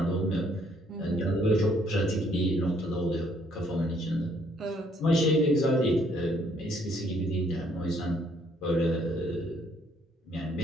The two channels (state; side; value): normal; both; correlation 0.66